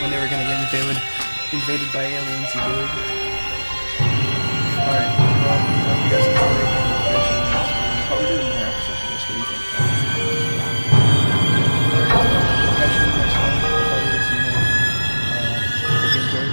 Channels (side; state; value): both; inverted; correlation -1.00